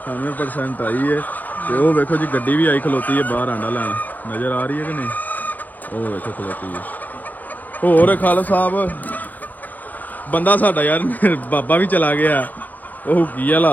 98% आई है। ਤੇ ਉਹ ਵੇਖੋ ਜੀ ਗੱਡੀ ਵੀ ਆਈ ਖਲੋਤੀ ਹੈ ਬਾਹਰ ਆਂਡਾ ਲੈਣ, ਨਜ਼ਰ ਆ ਰਹੀ ਹੈ ਕਿ ਨਹੀਂ? ਉਹ ਵੇਖੋ ਖਲੋਤੀ ਹੈ। ਹੋਰ ਖਾਲਸਾ ਸਾਹਿਬ ਬੰਦਾ ਸਾਡਾ ਯਾਰ ਬਾਬਾ ਵੀ ਚਲਾ ਗਿਆ, ਉਹ ਕੀ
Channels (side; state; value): right; late; 0.083 ms